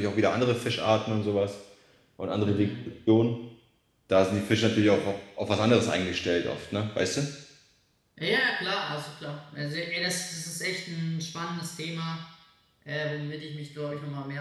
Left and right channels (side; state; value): both; identical; correlation 1.00